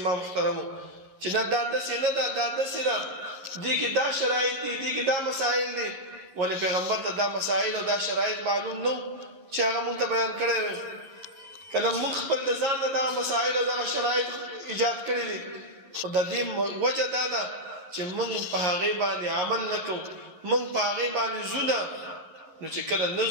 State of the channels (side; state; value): left; late; 11 ms